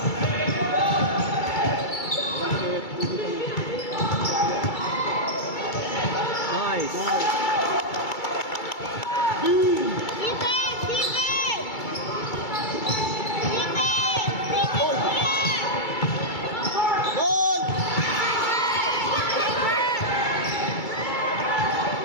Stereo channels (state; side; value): late; right; 2.3 ms